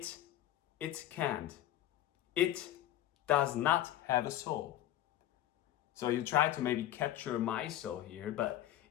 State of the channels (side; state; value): right; quieter; 12.8 dB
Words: can't. It does not have a soul. So you try to maybe capture my soul here, but